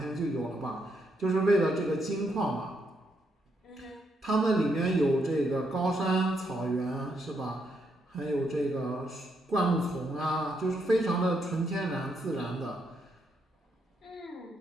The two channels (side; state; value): both; normal; correlation 0.78